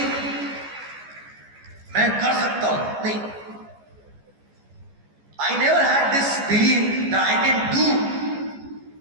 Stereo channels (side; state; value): left; late; 14 ms